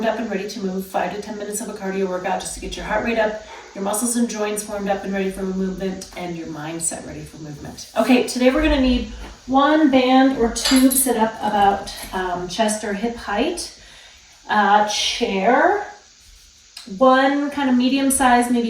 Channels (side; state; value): both; identical; correlation 1.00